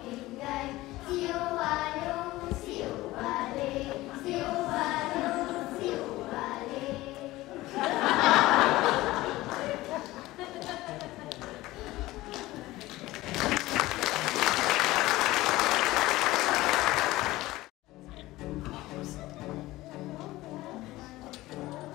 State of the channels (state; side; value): quieter; right; 18.0 dB